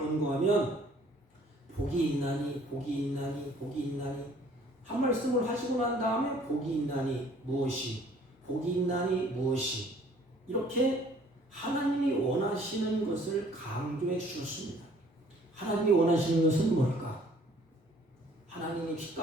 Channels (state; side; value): normal; both; correlation 0.57